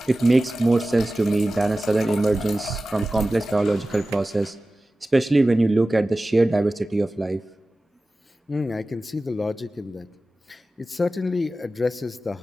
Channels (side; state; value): both; normal; correlation 0.96